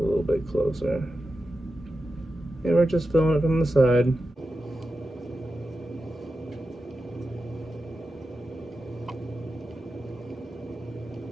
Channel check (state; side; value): normal; both; correlation 0.91